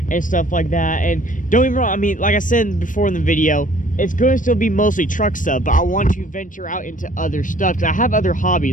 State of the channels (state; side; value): late; right; 0.38 ms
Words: and stuff like that. And don't get me wrong, I mean, like I said before in the video, it's going to still be mostly truck stuff, but I want to venture out into other stuff because I have other